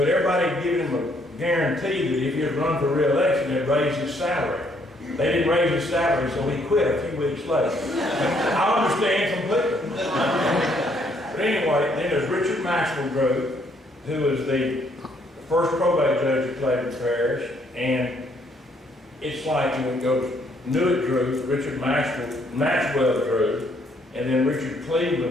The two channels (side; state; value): both; normal; correlation 0.68